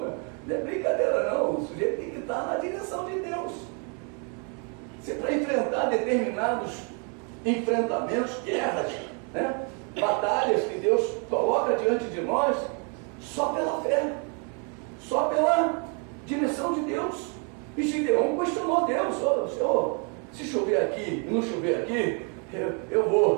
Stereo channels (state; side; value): quieter; left; 37.8 dB